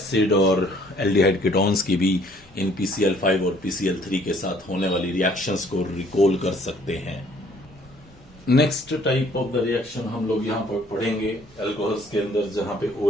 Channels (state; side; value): normal; both; correlation 0.60